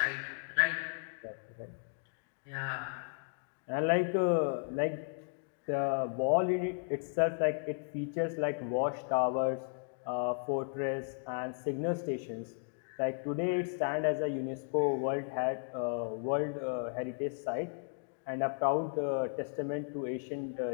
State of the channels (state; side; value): silent; right; 55 dB below the other